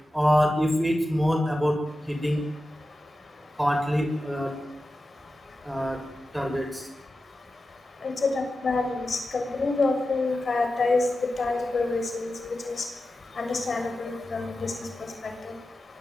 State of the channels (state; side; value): normal; both; correlation 0.92